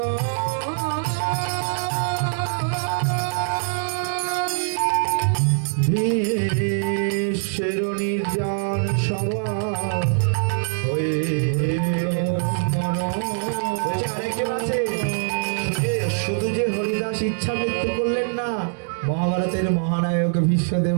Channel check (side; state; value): left; silent; 63 dB below the other